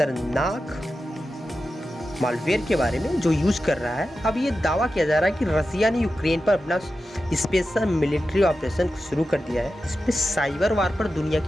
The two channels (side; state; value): both; normal; correlation 0.92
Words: मालवेयर के बारे में जो यूज़ कर रहा है, अब ये दावा किया जा रहा है कि रसिया ने यूक्रेन पर अपना स्पेशल मिलिट्री ऑपरेशन शुरू कर दिया है। इस पे साइबर वार पर दुनिया